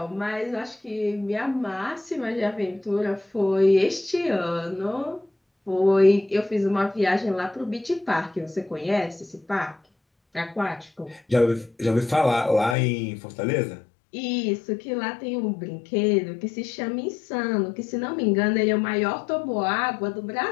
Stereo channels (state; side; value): drops out; right; at 12.8 s